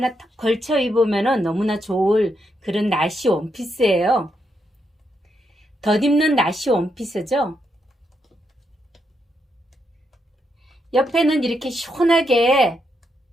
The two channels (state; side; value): normal; both; correlation 0.80